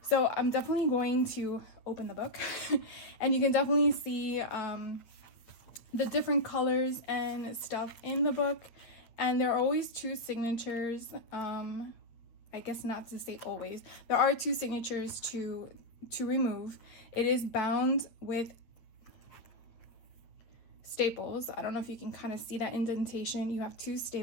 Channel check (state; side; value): late; right; 8.7 ms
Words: So I'm definitely going to open the book and you can definitely see the different colors and stuff in the book, and there are always 2 signatures. I guess not to say always, there are 2 signatures to remove. It is bound with staples. I don't know if you can kind of see that indentation. You have 2